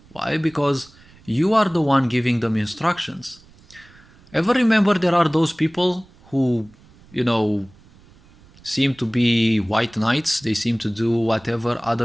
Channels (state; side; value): noise; right; rumble, 26 dB below the sound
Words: Why? Because you are the one giving them instructions. Ever remember there are those people who, seem to be white knights? They seem to do whatever